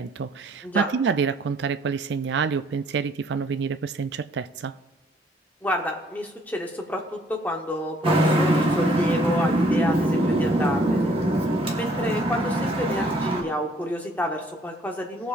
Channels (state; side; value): normal; both; correlation 0.61